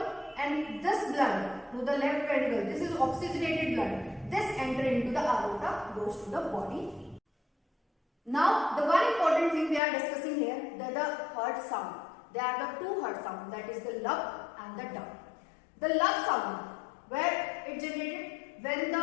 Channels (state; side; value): drops out; right; at 9.8 s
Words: and this blood to the left ventricle, this is oxygenated blood, this enter into the aorta, goes to the body. Now, the one important thing we are discussing here, that the heart sound. There are the two heart sounds, that is the lub and the dub. The lub sound, where it generated when